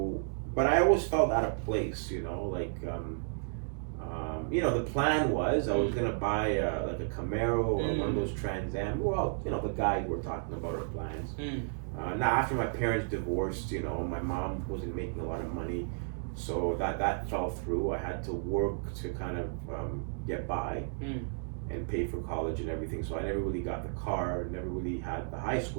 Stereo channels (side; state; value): left; silent; digital silence